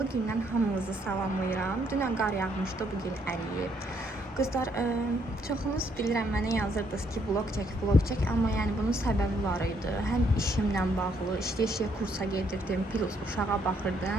gündən hamınızı salamlayıram. Dünən qar yağmışdı, bugün əriyib. Qızlar, çoxunuz bilirəm mənə yazırdınız ki, vlog çək, amma yəni bunun səbəbi var idi. Həm işimlə bağlı, işləyə kursa gedirdim, plus uşağa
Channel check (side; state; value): both; normal; correlation 0.71